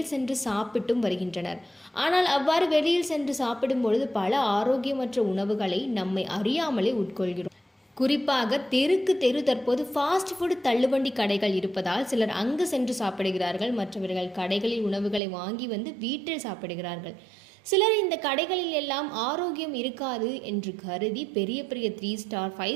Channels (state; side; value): drops out; left; at 15.2 s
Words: சென்று சாப்பிட்டும் வருகின்றனர். ஆனால் அவ்வாறு வெளியில் சென்று சாப்பிடும் பொழுது பல ஆரோக்கியமற்ற உணவுகளை நம்மை அறியாமலே உட்கொள்கிறோம். குறிப்பாக தெருக்கு தெரு தற்போது ஃபாஸ்ட் ஃபுட் தள்ளுவண்டி கடைகள் இருப்பதால் சிலர் அங்கு சென்று சாப்பிடுகிறார்கள். மற்றவர்கள் கடைகளில் உணவுகளை வாங்கி வந்து வீட்டில் சாப்பிடுகிறார்கள். சிலர் இந்த கடைகளில் எல்லாம் ஆரோக்கியம் இருக்காது என்று கருதி பெரிய பெரிய 3 ஸ்டார்